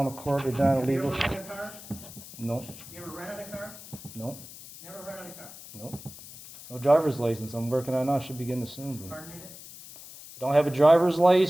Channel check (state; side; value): noise; left; hiss, 16 dB below the sound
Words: the court. They're done Have you illegal. ever rented a car? No. You ever rented a car? No. Never rented a car? No. No driver's license. I'm working on it now. Should be getting it soon. But Pardon me? don't have a driver's